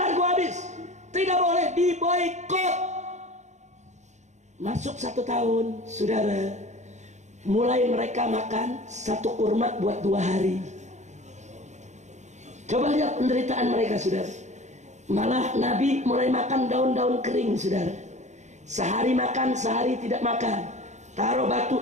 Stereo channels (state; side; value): late; left; 0.34 ms